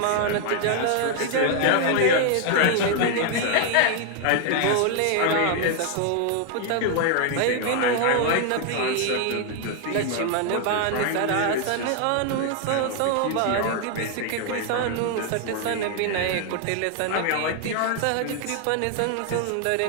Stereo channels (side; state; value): both; different; correlation 0.00